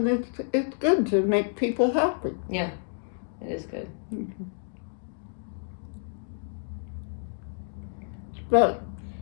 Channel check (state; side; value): silent; right; digital silence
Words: it's good to make people happy. Yeah, it is good. But